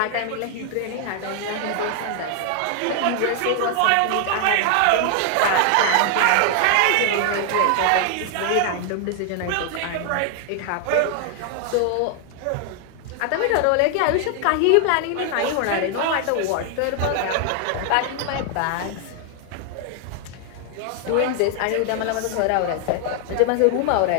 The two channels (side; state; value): both; different; correlation 0.00